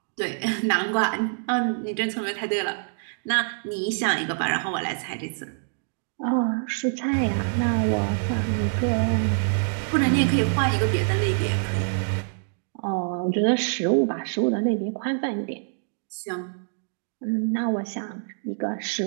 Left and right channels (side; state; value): left; silent; digital silence